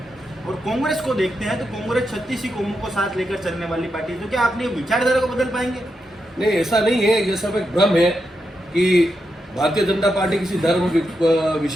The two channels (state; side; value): normal; both; correlation 0.85